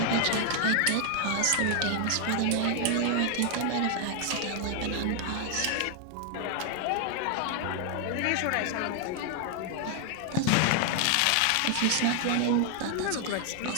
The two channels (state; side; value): different; both; correlation 0.00